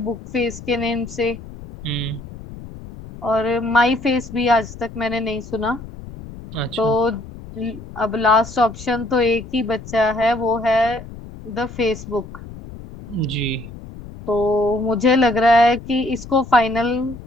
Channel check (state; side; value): noise; left; rumble, 14 dB below the sound